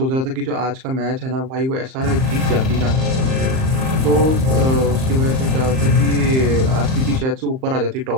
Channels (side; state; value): left; late; 38 ms